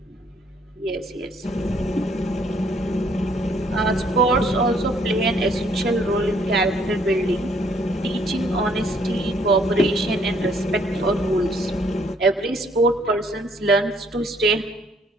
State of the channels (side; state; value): both; normal; correlation 0.64